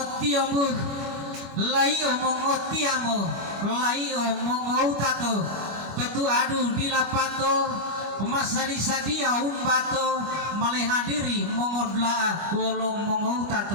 laio mongotiamo laio mongoutato tetu adu dilapato masadi-sadia umbato malehadiri mongodla wolo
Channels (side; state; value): left; late; 25 ms